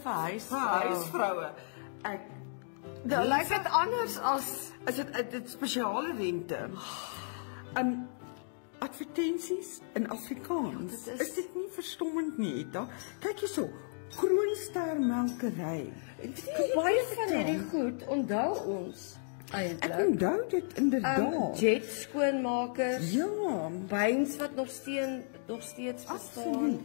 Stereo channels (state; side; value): silent; right; digital silence